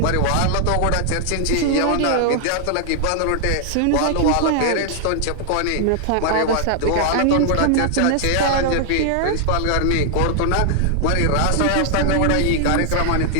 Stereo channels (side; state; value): both; different; correlation 0.00